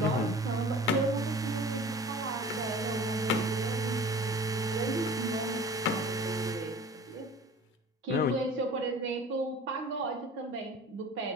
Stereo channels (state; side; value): normal; both; correlation 0.42